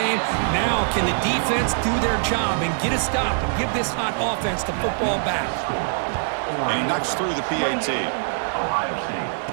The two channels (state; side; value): silent; left; 63 dB below the other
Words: Now can the defense do their job and get a stop and give this hot offense the football back? And he knocks through the PAT.